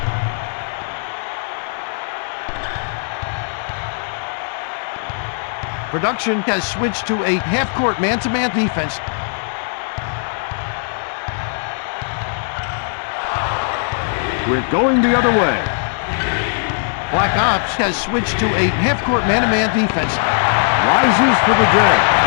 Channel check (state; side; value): silent; right; digital silence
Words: Production has switched to a half-court man-to-man defense. We're going the other way. Black Ops has switched to a half-court man-to-man defense. Rises for the drag.